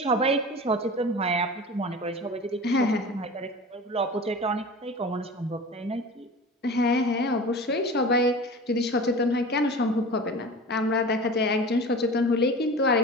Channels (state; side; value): normal; both; correlation 0.35